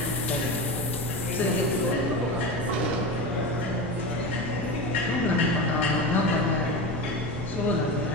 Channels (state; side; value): normal; both; correlation 0.24